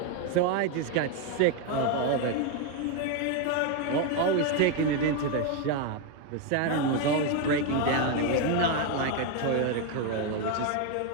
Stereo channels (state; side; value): different; both; correlation 0.01